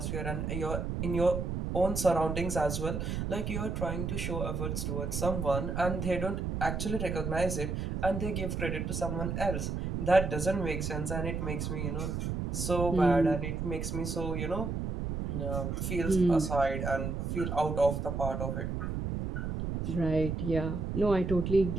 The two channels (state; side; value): noise; right; rumble, 2 dB below the sound